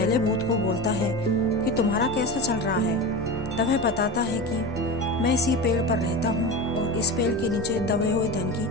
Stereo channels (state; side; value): normal; both; correlation 0.26